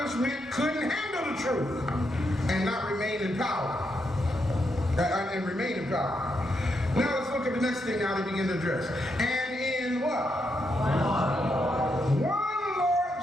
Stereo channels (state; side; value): normal; both; correlation 0.81